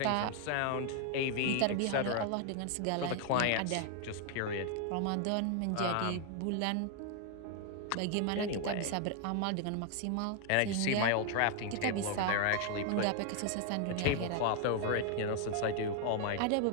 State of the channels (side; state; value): both; different; correlation 0.00